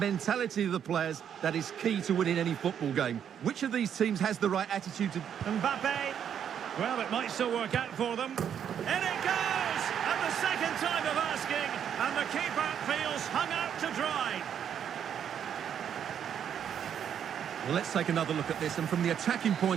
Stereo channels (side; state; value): left; quieter; 8.7 dB